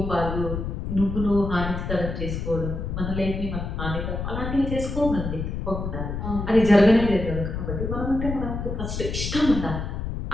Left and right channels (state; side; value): noise; left; rumble, 4 dB below the sound